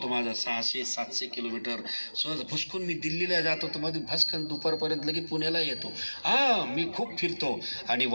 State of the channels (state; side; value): inverted; both; correlation -1.00